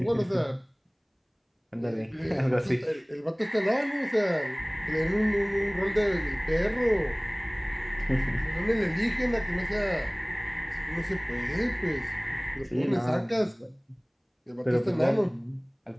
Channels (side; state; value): both; identical; correlation 1.00